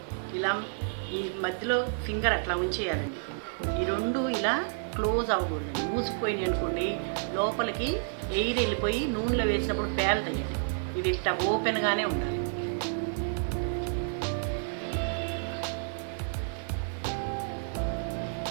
ఇలా ఈ మధ్యలో ఫింగర్ అట్లా ఉంచేయాలండి. ఈ రెండు ఇలా క్లోజ్ అవ్వకూడదండి. మూసుకుపోయినాయి అనుకోండి, లోపలికి ఎయిర్ వెళ్ళిపోయి నూనెలో వేసినప్పుడు పేలుతాయండి. ఇది ఇట్లా ఓపెన్గానే ఉండాలి.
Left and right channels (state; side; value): silent; left; digital silence